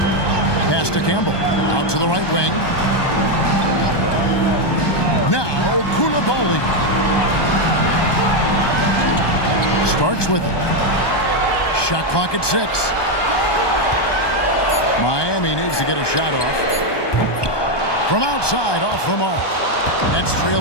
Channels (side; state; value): right; late; 1.2 ms